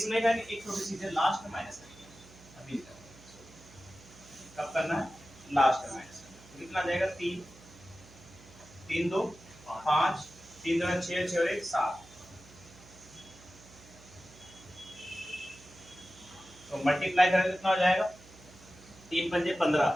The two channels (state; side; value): noise; right; hum, 22 dB below the sound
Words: नहीं कहानी, एक छोटी चीज है, लास्ट में माइनस करेंगे अभी, कब करना है, लास्ट में माइनस करना है। तो कितना जाएगा 3 3 2 5 3 2 6 6 और 1 7, तो मल्टीप्लाई करें कितना हो जाएगा, 3 पंजे 15